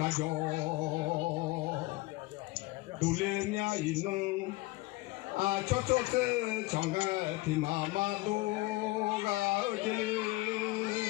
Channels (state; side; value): quieter; right; 21.0 dB